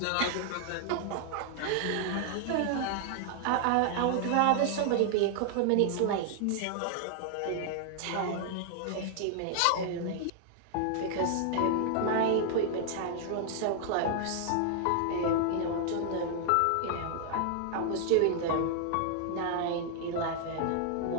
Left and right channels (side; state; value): both; different; correlation 0.00